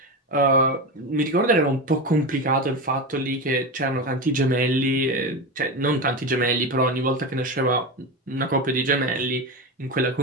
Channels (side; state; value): both; normal; correlation 0.20